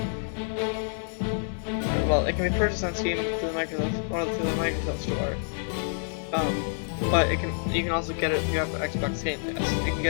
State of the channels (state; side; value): silent; right; 60 dB below the other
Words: Well, it can be purchased on Steam through the Microsoft Store. But you can also get it if you have the Xbox Game Pass. You can